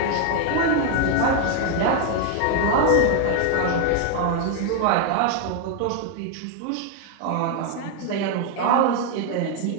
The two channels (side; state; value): both; different; correlation 0.01